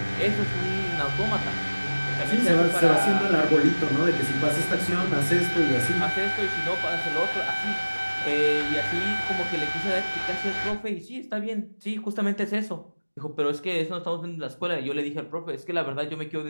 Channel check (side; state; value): both; inverted; correlation -1.00